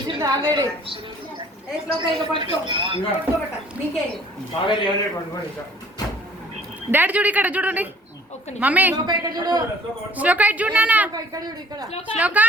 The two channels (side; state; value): both; normal; correlation 0.55